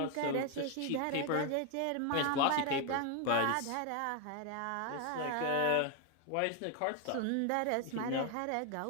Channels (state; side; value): different; both; correlation 0.01